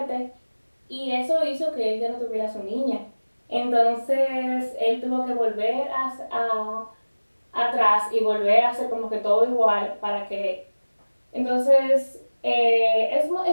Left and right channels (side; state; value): both; inverted; correlation -1.00